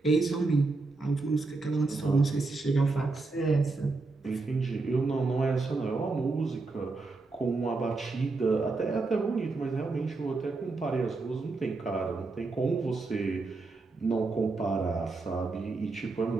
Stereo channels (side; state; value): left; quieter; 3.7 dB